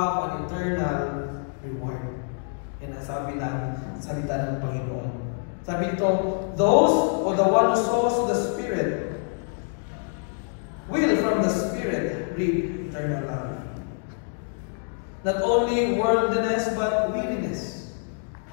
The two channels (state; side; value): silent; right; 61 dB below the other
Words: an eternal reward. Yan ang sabi na salita ng Panginoon. Sabi ito, those, or the one who sows the Spirit, will from the Spirit reap eternal life. Not only worldliness, but weariness.